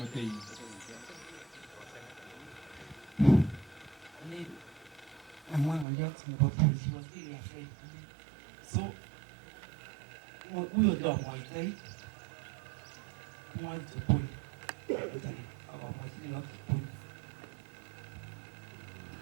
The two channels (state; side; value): drops out; left; at 5.9 s